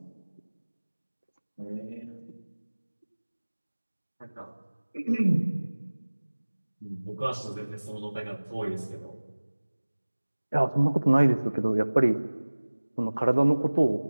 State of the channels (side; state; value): both; inverted; correlation -1.00